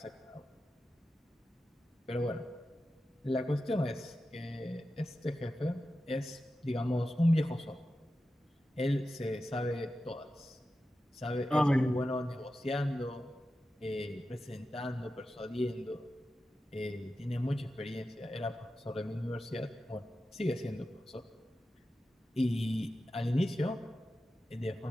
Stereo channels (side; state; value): both; normal; correlation 0.92